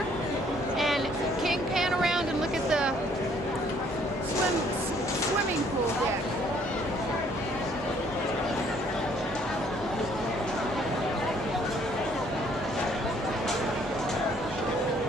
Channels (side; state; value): both; normal; correlation 0.62